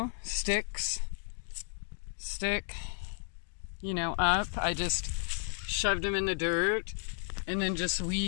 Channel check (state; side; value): silent; right; 56 dB below the other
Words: stick, up. I just shoved them in the dirt and then just